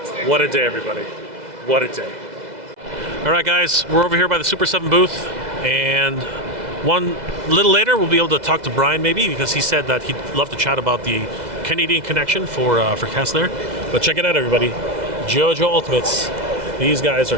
What a day, everybody. What a day. All right, guys, we're over here by the Super7 booth, and one little later we'll be able to talk to Brian maybe, because he said that he'd love to chat about the Canadian connection for Cat's Lair. But check it out, everybody. JoJo Ultimates. These guys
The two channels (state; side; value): late; left; 2.0 ms